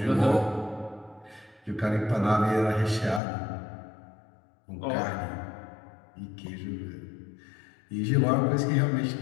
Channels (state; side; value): drops out; right; at 3.2 s